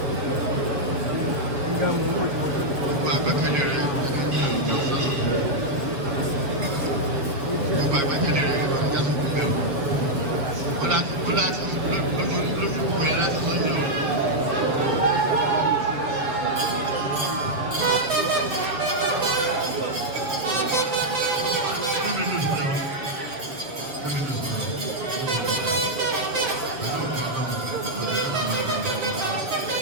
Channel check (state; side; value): late; left; 7.1 ms